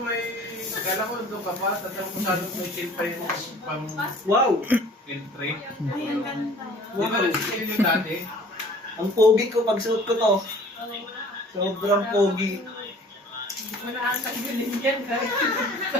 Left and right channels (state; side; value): normal; both; correlation 0.49